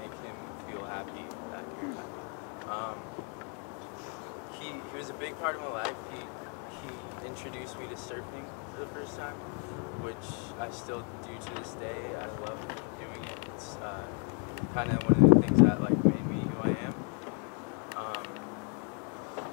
him feel happy that you're happy. He was a big part of my life. He introduced me to surfing for the first time, which I still do to this day. I love doing it. It's kind of one of the things that like made me who I am.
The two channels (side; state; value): right; quieter; 37.1 dB